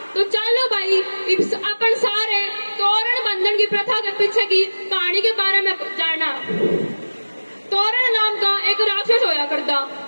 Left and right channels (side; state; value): both; inverted; correlation -1.00